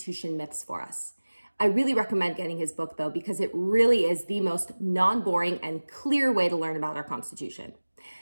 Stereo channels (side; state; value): both; inverted; correlation -1.00